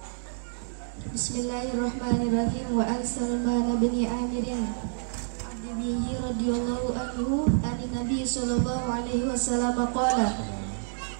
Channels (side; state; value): left; silent; 59 dB below the other